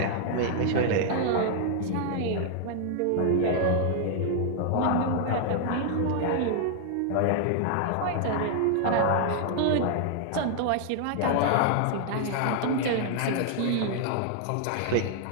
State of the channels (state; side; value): different; both; correlation 0.00